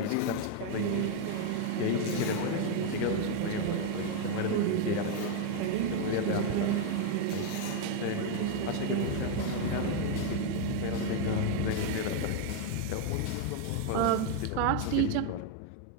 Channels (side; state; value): both; different; correlation 0.01